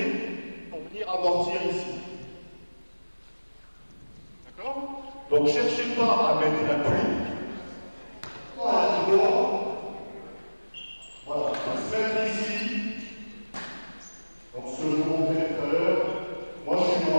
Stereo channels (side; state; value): both; inverted; correlation -1.00